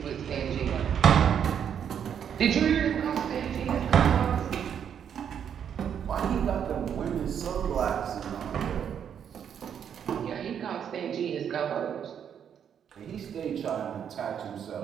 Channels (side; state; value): left; quieter; 8.4 dB